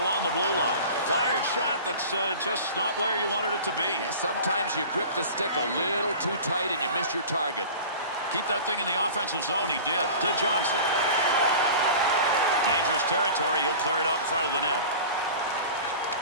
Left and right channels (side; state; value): both; inverted; correlation -0.38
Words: along the blue line. Fired shot that's just not where you wanted it to be. Yeah, sometimes you grip the stick a little too tight and you miss your target. Keep that thing in the offensive zone. He did. To Johnson. Dangerous territory. He'll clear it out in front of the net.